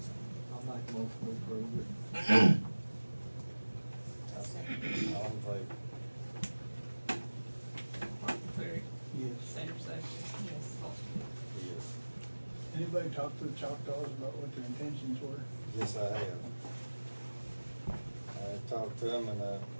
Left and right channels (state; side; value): inverted; both; correlation -1.00